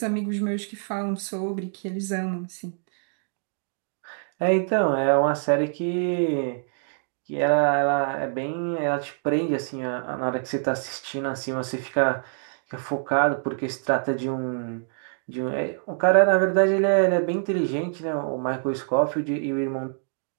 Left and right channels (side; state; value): left; silent; digital silence